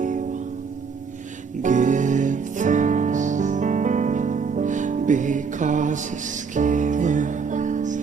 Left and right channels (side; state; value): left; quieter; 5.6 dB